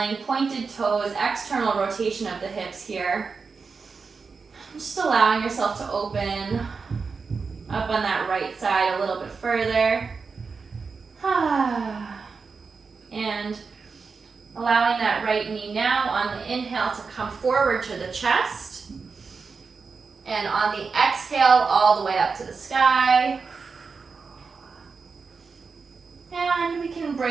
pointed toes, external rotation of the hips here. Just allowing yourself to open up on that right side a little bit further. And allowing that right knee now on the inhale to come forward to the chest. And on the exhale, all the way up to the sky. And we can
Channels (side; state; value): left; quieter; 4.9 dB